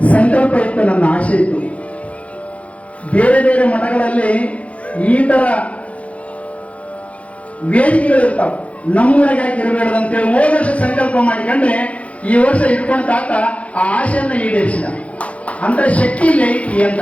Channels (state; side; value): late; right; 0.064 ms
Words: ಸಂಕಲ್ಪ ಇತ್ತು, ನನ್ನ ಆಸೆ ಇತ್ತು, ಬೇರೆ ಬೇರೆ ಮಠಗಳಲ್ಲಿ ಈ ತರ ವೇದಿಕೆಗಳು ಇರ್ತಾವ, ನಮ್ಮೂರಾಗ ಯಾಕೆ ಇರಬೇಡದು ಅಂತೇಳಿ ಹೋದ ವರ್ಷ ಸಂಕಲ್ಪ ಮಾಡಿಕೊಂಡ್ರೆ ಈ ವರ್ಷ ಇಟ್ಕೊಂಡ ತಾತ ಆ ಆಸೆಯನ್ನ ಈಡೇರಿಸಿದ. ಅಂತ ಶಕ್ತಿ ಇಲ್ಲ ಐತಿ